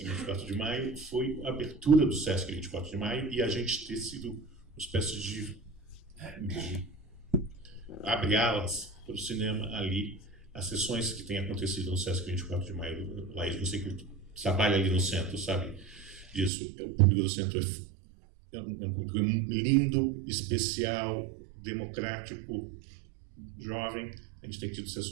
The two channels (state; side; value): drops out; left; at 16.5 s